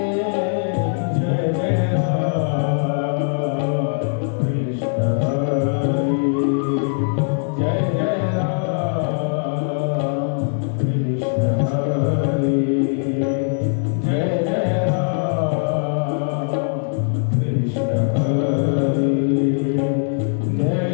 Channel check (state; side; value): silent; right; 59 dB below the other